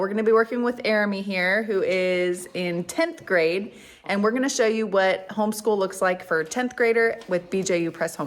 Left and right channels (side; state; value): both; identical; correlation 1.00